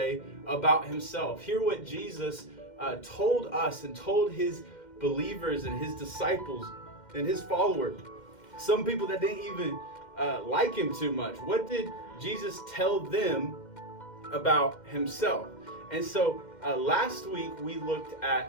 about himself. Hear what Jesus told us and told his believers and his disciples and his followers. Some people that didn't even like him too much. What did Jesus tell them about himself? And so last week we looked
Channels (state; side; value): late; right; 2.1 ms